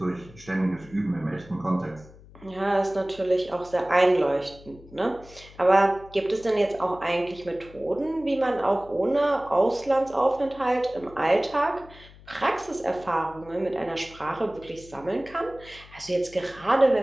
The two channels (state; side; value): noise; left; hum, 21 dB below the sound